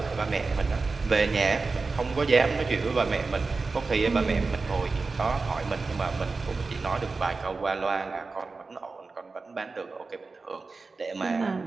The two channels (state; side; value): quieter; left; 4.0 dB